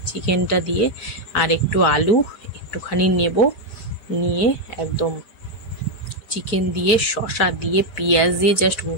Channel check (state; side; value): late; right; 4.6 ms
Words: চিকেনটা দিয়ে, আর একটু আলু একটুখানি নেব, নিয়ে একদম চিকেন দিয়ে শসা দিয়ে পেঁয়াজ দিয়ে জাস্ট